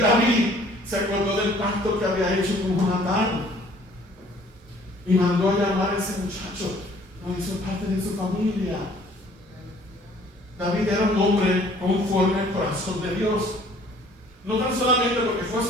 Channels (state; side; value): normal; both; correlation 0.56